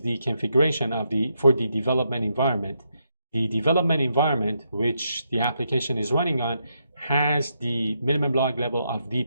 the configuration for the development environment. The development environment, which the application is running on, has the minimum log level of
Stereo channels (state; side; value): inverted; both; correlation -0.80